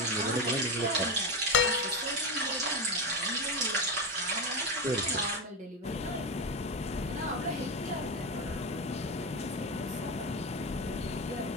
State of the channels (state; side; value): normal; both; correlation 0.13